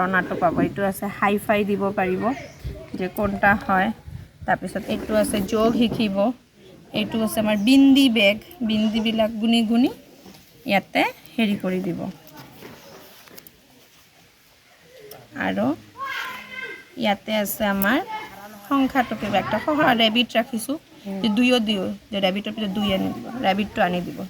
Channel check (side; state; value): both; identical; correlation 1.00